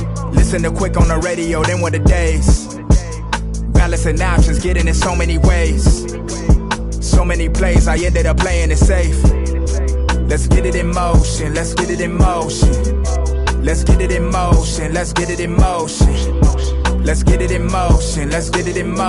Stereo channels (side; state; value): both; identical; correlation 1.00